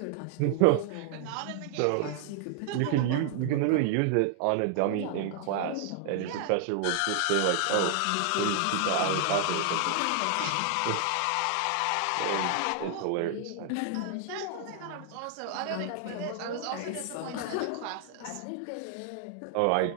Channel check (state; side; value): different; both; correlation 0.00